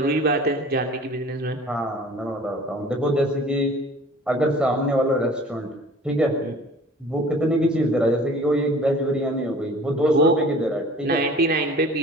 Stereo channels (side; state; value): both; normal; correlation 0.46